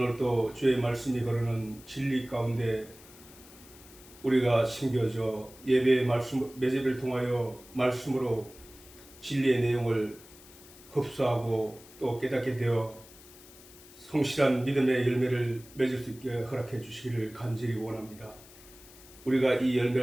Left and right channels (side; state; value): left; noise; hiss, 21 dB below the sound